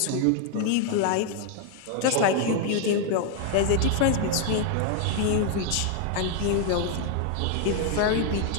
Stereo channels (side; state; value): both; different; correlation 0.00